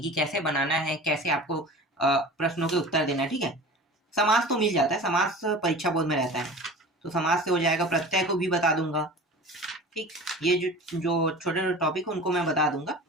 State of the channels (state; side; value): normal; both; correlation 0.37